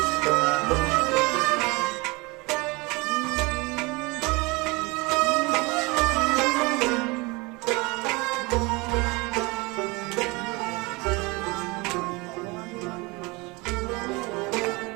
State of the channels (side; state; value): left; quieter; 25.7 dB